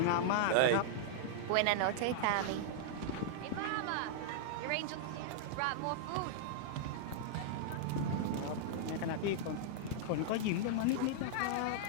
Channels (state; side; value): different; both; correlation -0.01